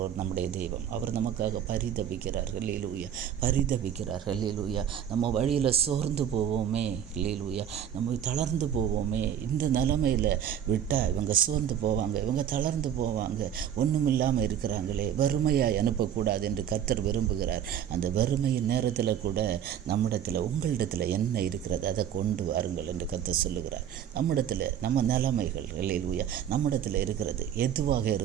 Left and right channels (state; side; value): quieter; left; 9.5 dB